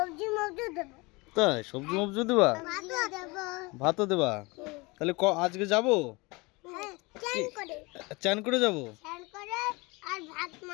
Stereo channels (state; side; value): quieter; right; 25.4 dB